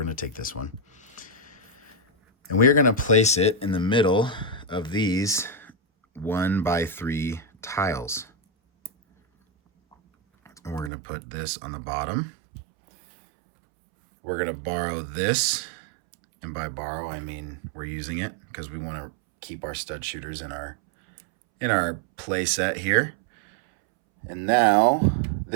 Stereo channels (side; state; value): left; drops out; at 10.9 s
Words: going to take this one. And we are going to place it in the middle of these 1x3 tiles. And we're going to put this on the bottom. We're going to borrow this. And by borrow, I mean we're using it because we want to keep our stud shooters in our play set here. And now